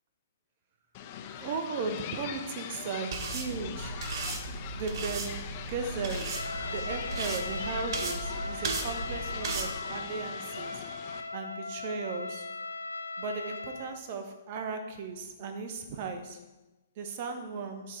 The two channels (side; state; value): both; inverted; correlation -0.49